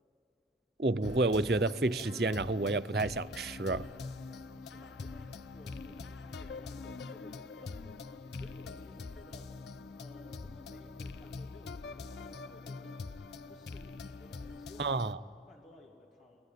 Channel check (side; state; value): both; normal; correlation 0.45